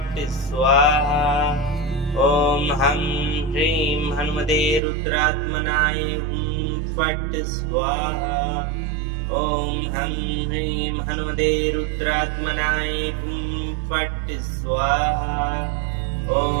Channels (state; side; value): drops out; left; at 4.8 s